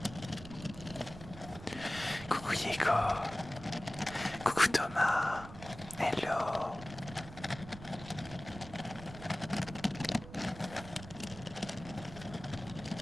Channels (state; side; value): noise; right; rumble, 14 dB below the sound